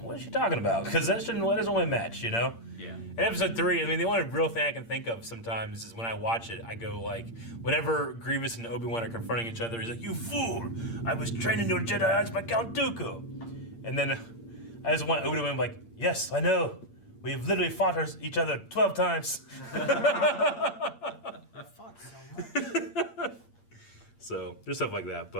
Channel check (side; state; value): right; late; 8.7 ms